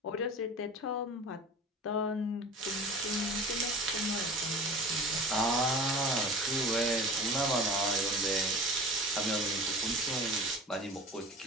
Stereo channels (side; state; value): both; normal; correlation 0.37